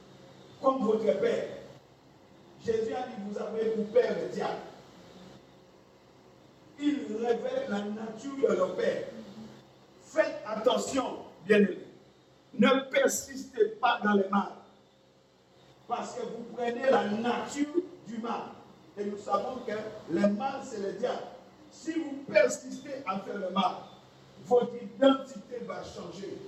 comme votre père. Jésus a dit, vous avez pour père le diable. Il révèle la nature de leur père. Faites attention, bien-aimés. Ne persistez pas dans le mal. Parce que vous prenez la nature du mal. Et nous savons que le mal, c'est le diable. Si vous persistez à faire le mal, votre identité va changer.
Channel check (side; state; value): both; identical; correlation 1.00